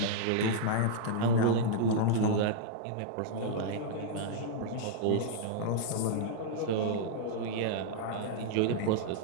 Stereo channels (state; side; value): different; both; correlation -0.01